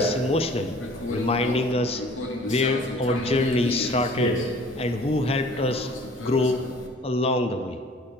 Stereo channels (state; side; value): normal; both; correlation 0.49